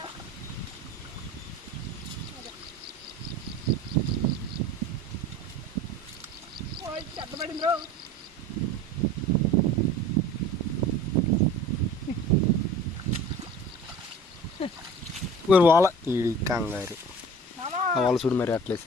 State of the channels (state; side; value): normal; both; correlation 0.42